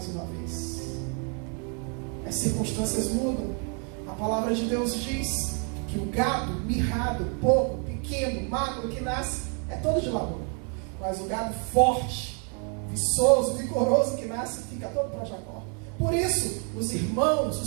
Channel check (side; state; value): left; quieter; 39.5 dB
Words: uma vez. As circunstâncias mudam. A palavra de Deus diz que o gado mirrado, pouco, pequeno, magro que nasce, é todo de Labão. Mas o gado forte, viçoso, vigoroso que nasce, fica todo para Jacó. Por isso, os irmãos,